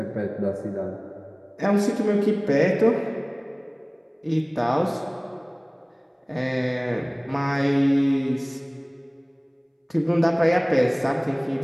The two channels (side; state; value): both; identical; correlation 1.00